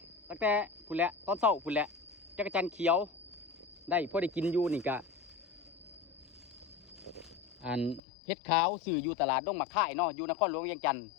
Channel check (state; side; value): drops out; right; at 8.0 s